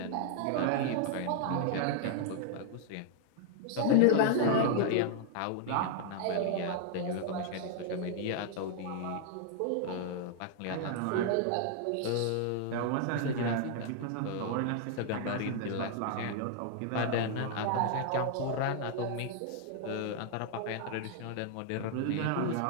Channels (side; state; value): both; different; correlation 0.00